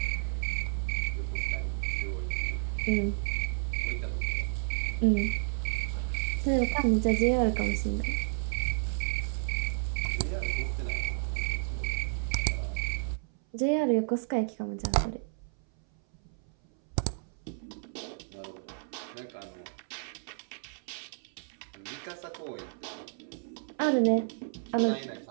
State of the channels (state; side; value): silent; left; 57 dB below the other